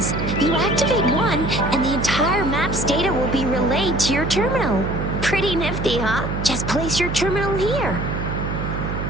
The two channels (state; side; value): noise; right; hum, 4 dB below the sound